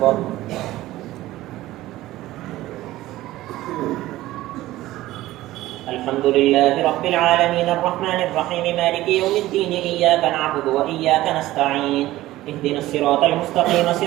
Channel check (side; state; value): left; quieter; 16.2 dB